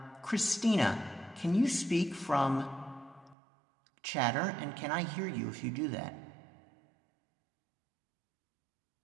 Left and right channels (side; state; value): left; drops out; at 3.4 s